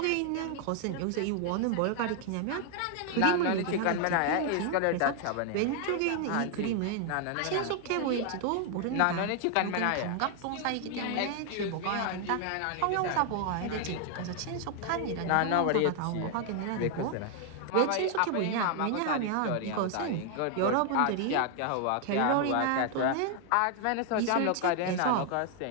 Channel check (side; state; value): both; different; correlation 0.00